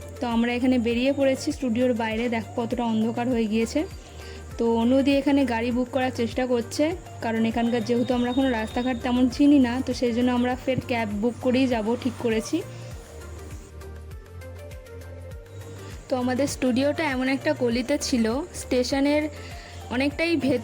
তো আমরা এখানে বেরিয়ে পড়েছি স্টুডিওর বাইরে, দেখো কতটা অন্ধকার হয়ে গিয়েছে। তো অনুদি এখানে গাড়ি বুক করার চেষ্টা করছে, কারণ এখানকার যেহেতু আমরা কোনো রাস্তাঘাট তেমন চিনি না, তো সেই জন্য আমরা ফের ক্যাব বুক করেই যাব ঠিক করেছি। তো আমাদের স্টুডিওটা এমন একটা গলিতে ছিল, স্টেশনের অনেকটাই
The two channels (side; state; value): both; identical; correlation 1.00